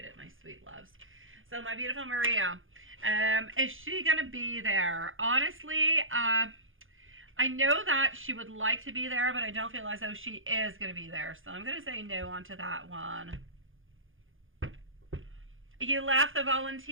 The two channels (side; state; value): left; late; 0.58 ms